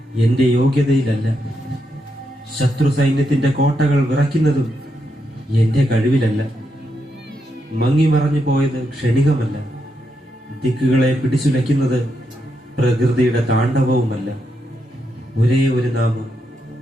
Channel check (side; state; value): both; normal; correlation 0.82